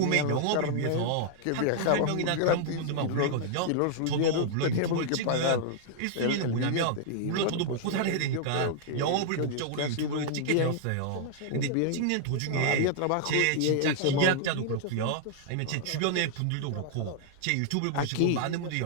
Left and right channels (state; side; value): different; both; correlation -0.01